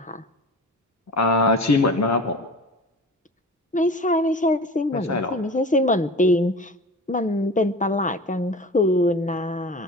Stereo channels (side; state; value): both; normal; correlation 0.36